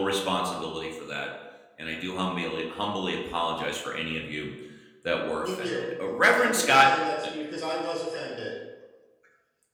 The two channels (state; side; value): identical; both; correlation 1.00